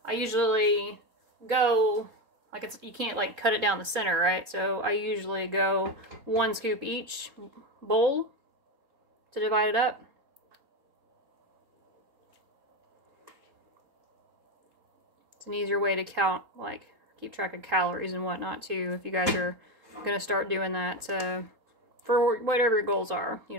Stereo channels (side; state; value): left; late; 4.2 ms